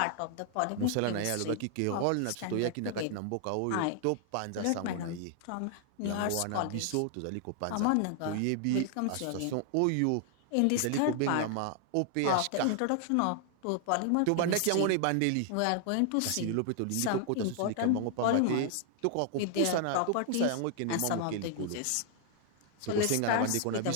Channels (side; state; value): both; different; correlation 0.00